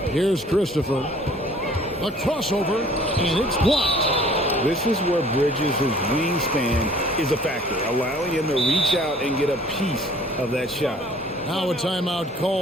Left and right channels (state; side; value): normal; both; correlation 0.53